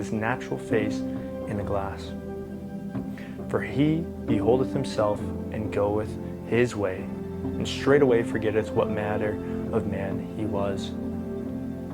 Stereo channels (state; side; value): identical; both; correlation 1.00